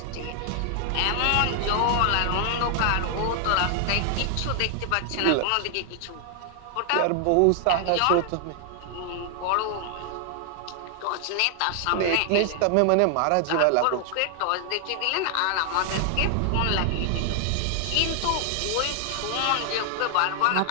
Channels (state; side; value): different; both; correlation 0.00